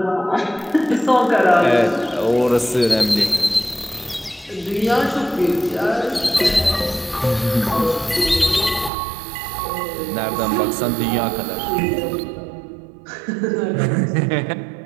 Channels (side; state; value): left; drops out; at 8.9 s